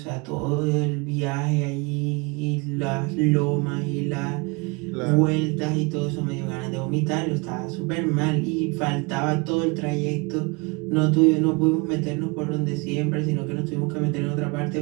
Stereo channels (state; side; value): quieter; left; 28.4 dB